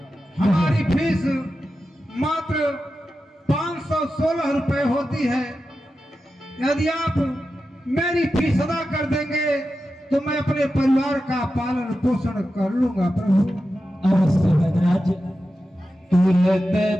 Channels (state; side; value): normal; both; correlation 0.91